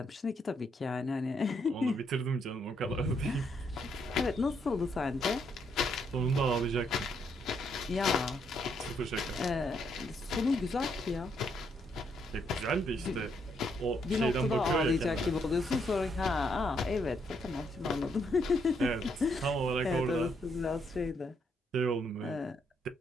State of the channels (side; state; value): both; normal; correlation 0.74